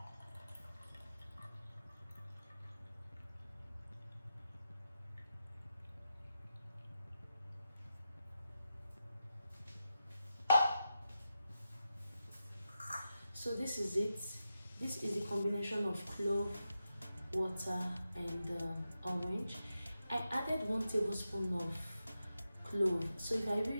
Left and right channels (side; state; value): both; inverted; correlation -0.89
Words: So this is it. This is the combination of clove, water, and orange. I added 1 tablespoon of clove. So